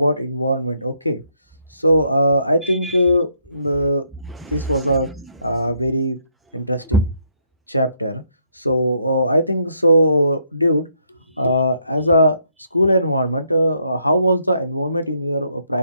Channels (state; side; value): inverted; both; correlation -0.73